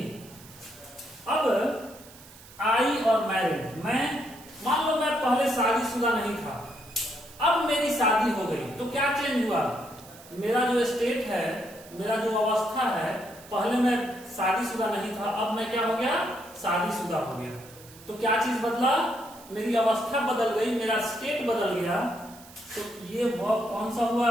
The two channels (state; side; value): noise; right; hiss, 21 dB below the sound